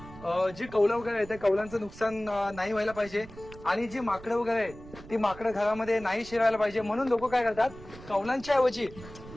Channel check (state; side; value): noise; right; rumble, 17 dB below the sound